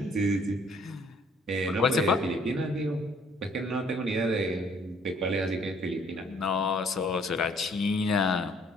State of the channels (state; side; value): normal; both; correlation 0.62